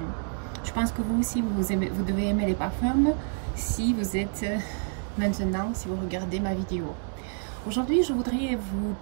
Je pense que vous aussi, vous devez aimer les parfums si vous êtes maintenant, si vous regardez ma vidéo. Aujourd'hui, je voudrais vous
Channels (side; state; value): left; silent; 55 dB below the other